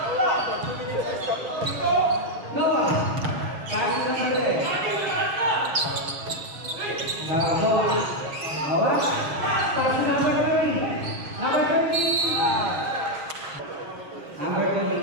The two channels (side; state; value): left; late; 6.8 ms